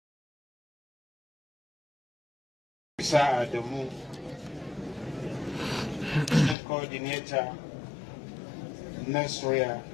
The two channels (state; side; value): drops out; right; at 6.6 s